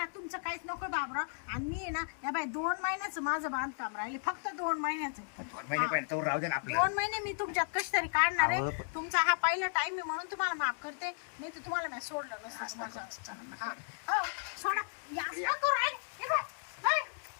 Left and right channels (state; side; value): silent; right; digital silence